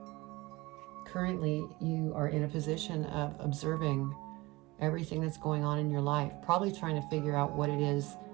Currently, you are in a position of observing everything that's going on in your life, probably trying to figure out what it is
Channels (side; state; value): left; quieter; 21.7 dB